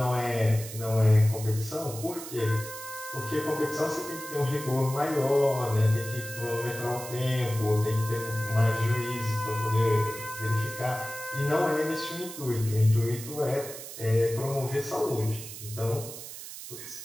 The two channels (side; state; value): right; noise; hiss, 11 dB below the sound